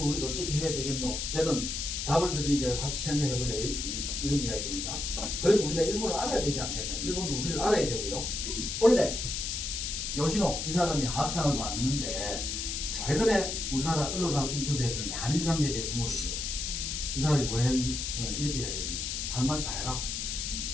우리가 어떻게 해야 되겠노? 저는 답을 드리니까 같이 생각해보자 이런 이야기입니다. 그리고 우리가 일본을 알아야 되지 않겠나. 일본도 우리를 알아야 되고요. 원래 요시노 이 사람이 학상을 받는데 최근에 우리나라 언론하고 인터뷰했는데 한일 관계에 대해서 물었어요. 이 사람이 뭐랬냐면 이렇게 이야기했습니다. 할 말 다 해라.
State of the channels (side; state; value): left; noise; hiss, 3 dB below the sound